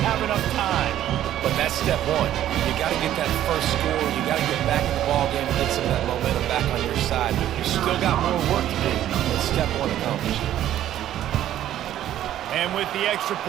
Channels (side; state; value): left; quieter; 12.1 dB